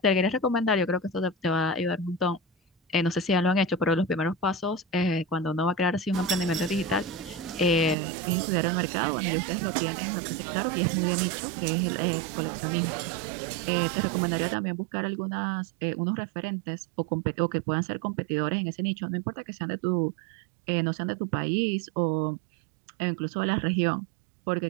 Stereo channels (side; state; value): left; drops out; at 8.0 s